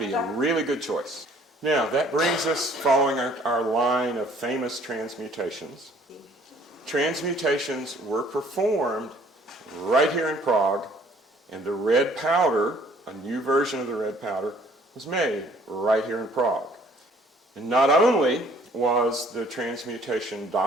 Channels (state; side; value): normal; both; correlation 0.58